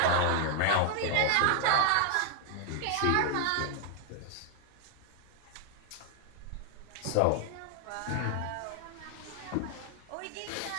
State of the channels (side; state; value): both; different; correlation 0.00